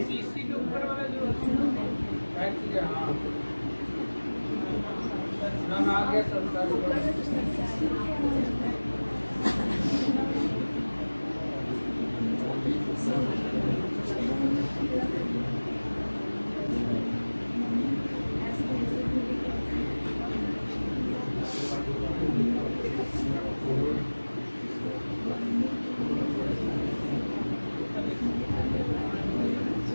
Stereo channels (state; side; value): inverted; both; correlation -1.00